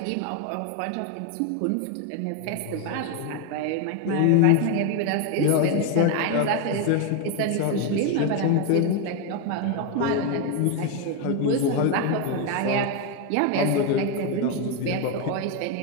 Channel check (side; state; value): both; different; correlation 0.02